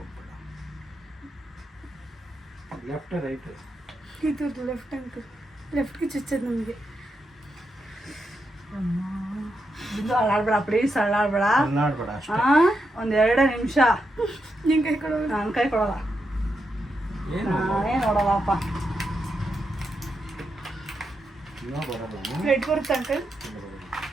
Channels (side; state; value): both; normal; correlation 0.84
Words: Left right? ಇದು ಲೆಫ್ಟ್ ಅಂಕಲ್. ಲೆಫ್ಟ್ಗೆ ಚುಚ್ಚೋದು ನಮಗೆ. ಬಿಂದು ಅಲ್ಲಾಡ್ಬೇಡ, ಪ್ಲೀಸ್ ಅಲ್ಲಾಡ್ಬೇಡ. ಅಲ್ಲಾಡ್ಬೇಡ ಅಷ್ಟೇ. ಒಂದು 2 ನಿಮಿಷ. ನಿನ್ ಕೈ ಕೊಡೋದು. ನನ್ನ ಕೈ ಕೊಡಲ್ಲ. ಏನು ನಾನೇ ನೋಡಲ್ಲಪ್ಪ. ಇನ್ನೂ ಬರಲ್ಲ. ಬ್ಲಡ್ ಬರುತ್ತೆ ಅಂಕಲ್.